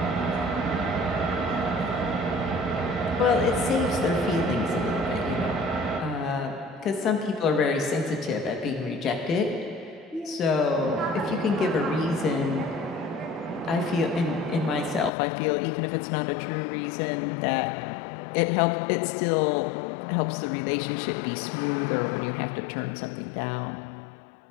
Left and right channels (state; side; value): drops out; right; at 15.1 s